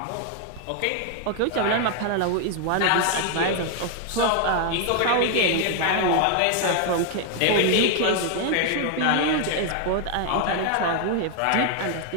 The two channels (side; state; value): both; different; correlation 0.00